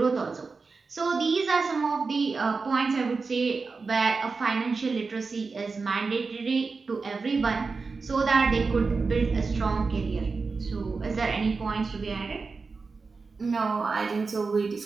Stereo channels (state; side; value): quieter; left; 4.4 dB